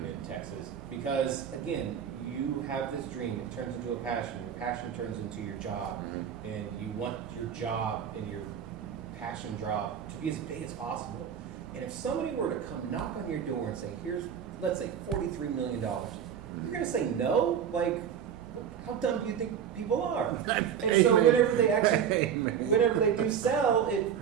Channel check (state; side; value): quieter; left; 8.3 dB